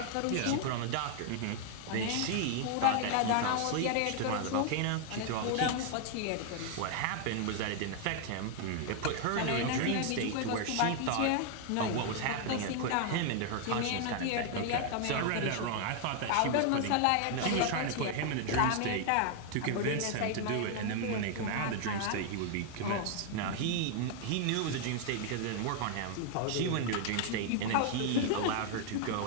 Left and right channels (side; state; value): both; different; correlation 0.00